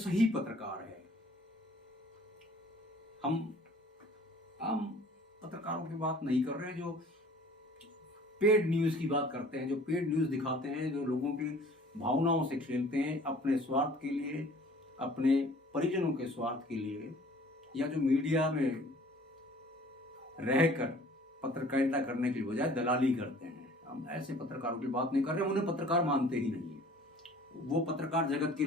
पत्रकार है। हम आम पत्रकारों की बात नहीं कर रहे हैं, जो पेड न्यूज़ की बात करते हैं, जो पेड न्यूज़ दिखाते हैं, जो लोगों की भावनाओं से खेलते हैं अपने स्वार्थ के लिए, अपने परिजनों के स्वार्थ के लिए या जो मीडिया में रहकर पत्रकारिता करने की बजाय दलाली करते हैं, हम ऐसे पत्रकारों की बात नहीं कर रहे, हम उन्हें पत्रकार मानते ही नहीं है। वो पत्रकार जगत के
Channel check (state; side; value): normal; both; correlation 0.51